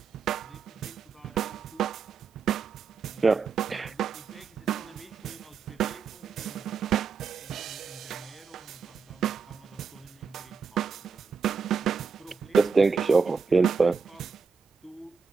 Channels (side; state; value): left; quieter; 5.3 dB